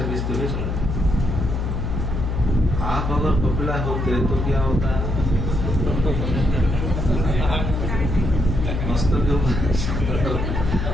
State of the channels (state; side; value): noise; left; hum, 1 dB below the sound